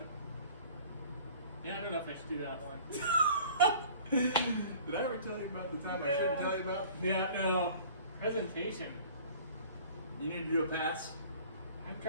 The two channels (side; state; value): both; inverted; correlation -0.48